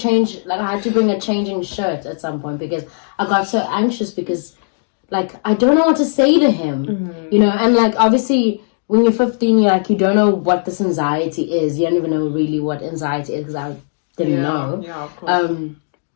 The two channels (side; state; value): right; silent; digital silence